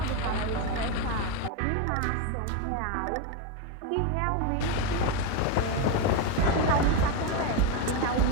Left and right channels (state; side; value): different; both; correlation 0.03